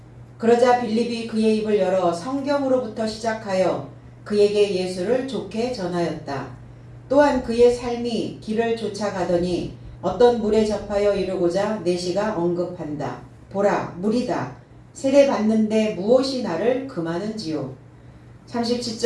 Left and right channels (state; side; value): identical; both; correlation 1.00